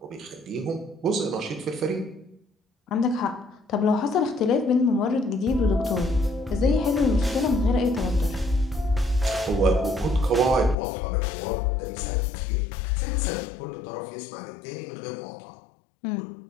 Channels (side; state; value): right; drops out; at 10.8 s